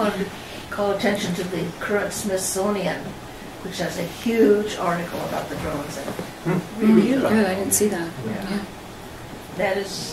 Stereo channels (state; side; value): identical; both; correlation 1.00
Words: to call attention to the current Smithsonian, which has a huge article about the drones. Really good. Good, I didn't see that. Yeah. That